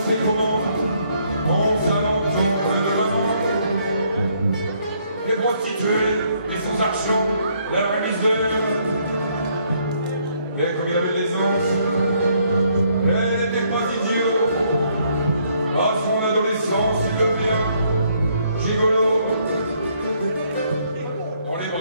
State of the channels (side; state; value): both; inverted; correlation -0.69